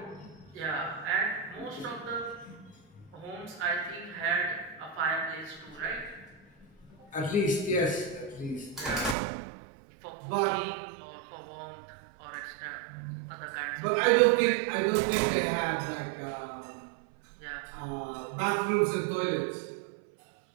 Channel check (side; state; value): left; drops out; at 9.2 s